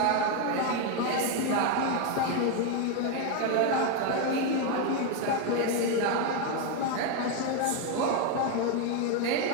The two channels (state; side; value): different; both; correlation 0.01